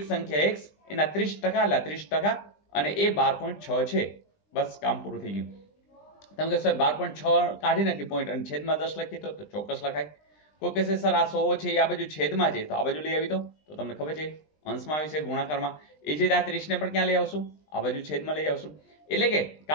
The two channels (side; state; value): right; late; 20 ms